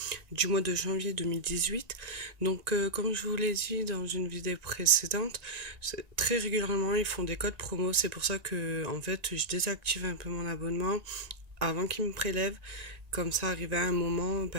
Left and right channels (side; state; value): left; late; 1.9 ms